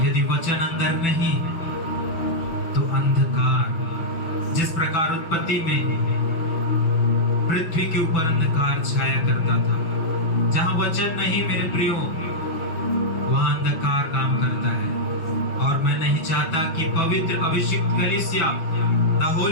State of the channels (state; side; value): late; right; 5.5 ms